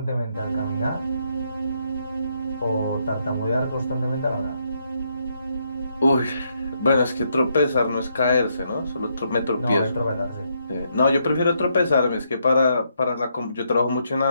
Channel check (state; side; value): inverted; both; correlation -0.76